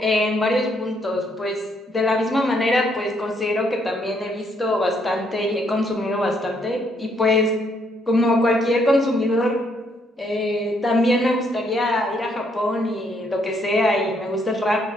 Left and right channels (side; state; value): both; normal; correlation 0.71